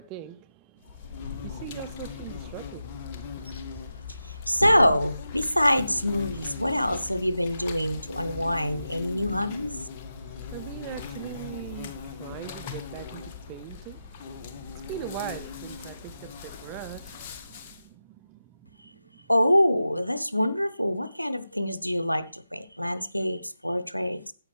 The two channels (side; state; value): both; inverted; correlation -0.90